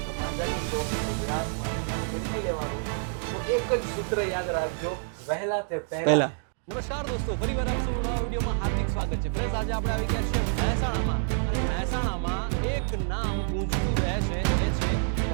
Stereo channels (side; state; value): left; silent; digital silence